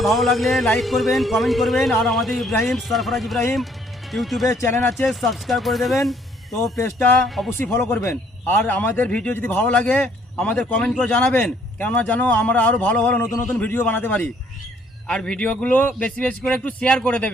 ভালো লাগলে লাইক করবেন, কমেন্ট করবেন, আর আমাদের ইব্রাহিম সরফরাজ ইব্রাহিম ইউটিউবে চ্যানেল আছে, সাবস্ক্রাইব করে দেবেন। তো পেজটা অবশ্যই ফলো করবেন, আর আমাদের ভিডিও যদি ভালো লাগে আমাদের কমেন্ট করে জানাবেন, কেননা জানো আমরা আরও ভালো ভালো নতুন নতুন ভিডিও বানাতে পারি। আর ভিডিওগুলো বেশি বেশি করে একটু শেয়ার করে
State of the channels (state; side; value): normal; both; correlation 0.64